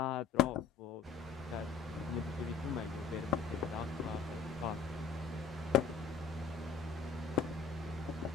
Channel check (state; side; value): quieter; right; 5.9 dB